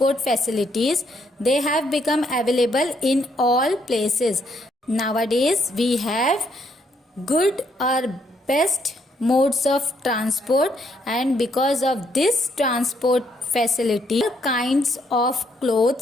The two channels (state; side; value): normal; both; correlation 0.72